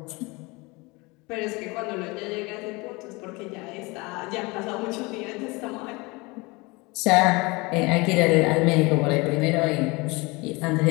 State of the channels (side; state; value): right; quieter; 25.2 dB